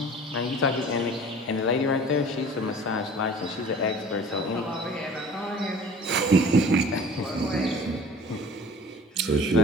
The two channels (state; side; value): normal; both; correlation 0.45